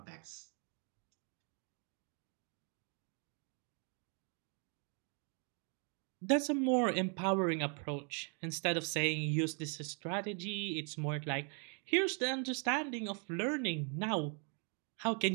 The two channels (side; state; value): left; quieter; 39.8 dB